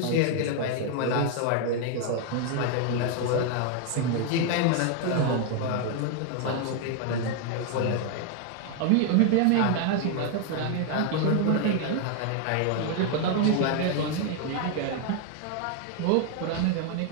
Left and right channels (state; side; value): different; both; correlation 0.00